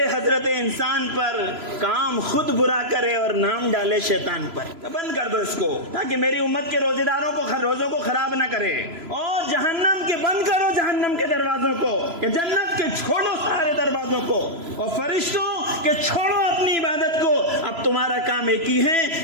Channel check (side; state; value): left; late; 3.0 ms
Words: حضرت انسان پر, کام خود برا کرے اور نام ڈالے شیطان پر. بند کر دو اس کو تاکہ میری امت کے روزے داروں کو روزوں کو خراب نہ کرے. اور جہنم کے بند کرو, جہنم کے دروازوں کو, کہ جنت کے چھوڑو سارے دروازوں کو, اور فرشتوں کہ چھوڑو اپنی عبادت کو. اب تمہارا کام ایک ہی